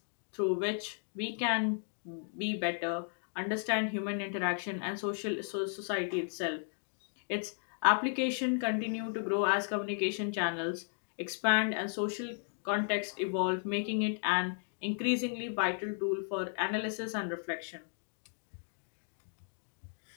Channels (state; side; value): silent; right; 55 dB below the other